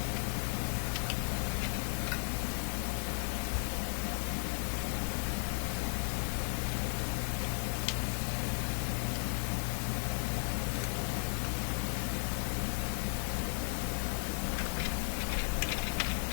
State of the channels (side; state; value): right; silent; 54 dB below the other